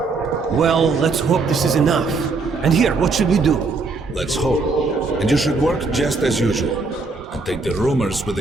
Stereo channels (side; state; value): left; quieter; 3.9 dB